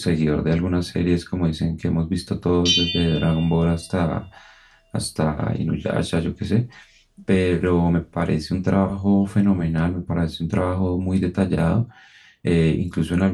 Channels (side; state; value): both; identical; correlation 1.00